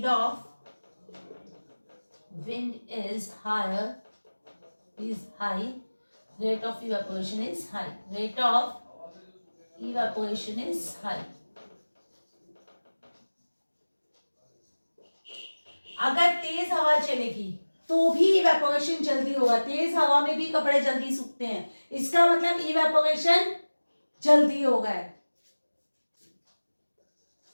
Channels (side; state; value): both; inverted; correlation -1.00